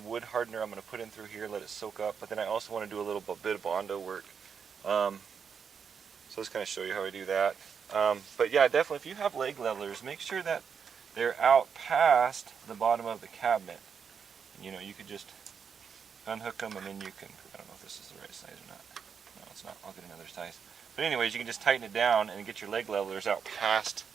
wood hardener I'm going to put in through here, let it soak up, but then I also want to do a little bit of Bondo work. So let's kind of show you how I do that. But yeah, definitely if you have leg levelers, make sure that they're out past the bottom of the cabinet. And, you know, you could just unhook them and then you can, I don't know if this is the right size or not. No, it's not. I'll get another size. But anyways, you can just tighten it down and get your leg levelers out past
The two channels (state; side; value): quieter; left; 6.7 dB